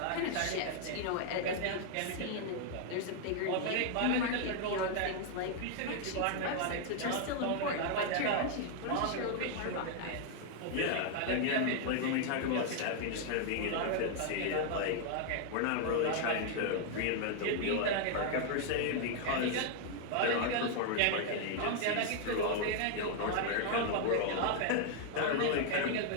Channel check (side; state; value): both; different; correlation 0.00